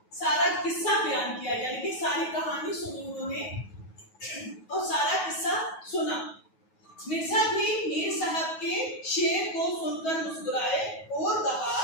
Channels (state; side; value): late; right; 9.3 ms